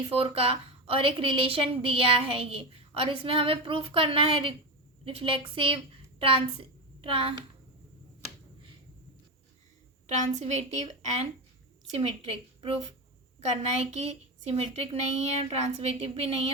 4 का और एक रिलेशन दिया है ये, और इसमें हमें प्रूफ करना है रिफ्लेक्सिव ट्रांसवेटिव एंड सिमेट्रिक। प्रूफ करना है कि सिमेट्रिक नहीं है, ट्रांसवेटिव भी नहीं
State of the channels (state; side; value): normal; both; correlation 0.17